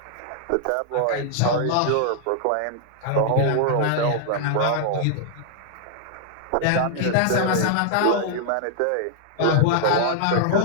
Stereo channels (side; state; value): both; different; correlation -0.01